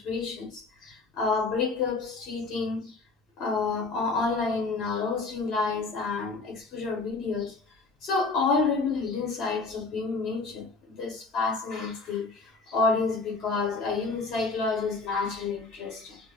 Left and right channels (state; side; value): quieter; right; 4.0 dB